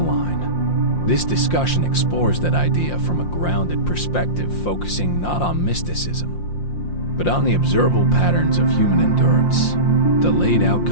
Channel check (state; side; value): late; right; 5.7 ms